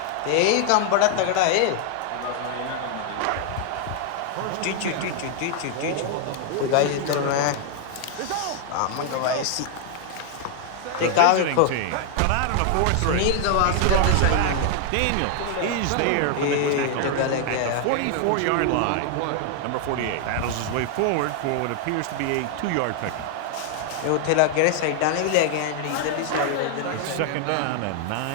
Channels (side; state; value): both; different; correlation 0.00